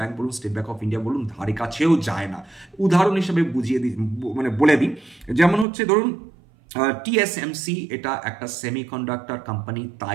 বলুন, স্টেট ব্যাংক অফ ইন্ডিয়া বলুন, ধারে কাছেও যায় না। উদাহরণ হিসেবে বলে দিই, যেমন হচ্ছে ধরুন টিএসএমসি, এটা একটা সেমিকন্ডাক্টর কোম্পানি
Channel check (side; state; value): left; drops out; at 5.7 s